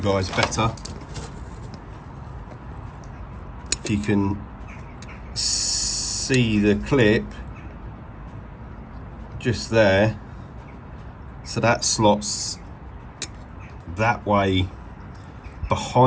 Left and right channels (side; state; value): both; identical; correlation 1.00